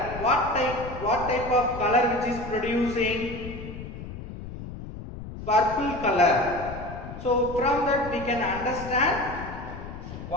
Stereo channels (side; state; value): left; noise; rumble, 11 dB below the sound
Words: What type of color which is producing? Purple color. So from that we can understand